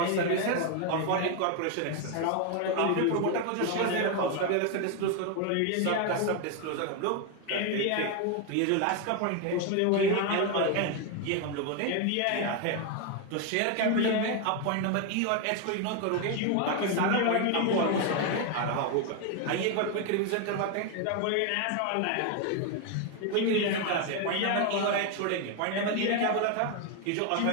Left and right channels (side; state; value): both; different; correlation 0.01